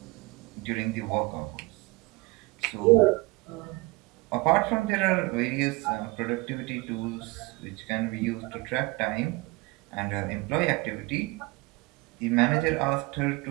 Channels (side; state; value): left; quieter; 24.3 dB